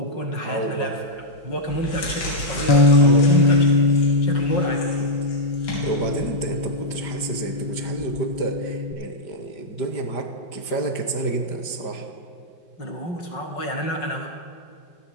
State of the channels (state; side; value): late; right; 5.1 ms